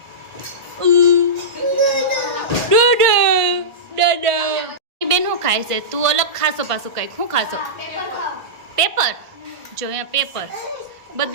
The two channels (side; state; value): left; late; 1.5 ms